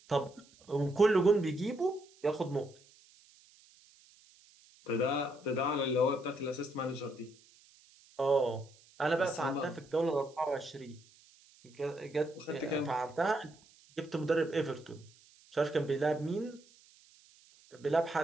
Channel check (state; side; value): noise; right; hiss, 27 dB below the sound